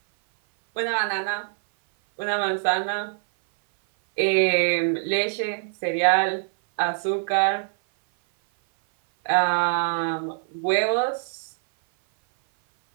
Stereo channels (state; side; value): silent; left; 58 dB below the other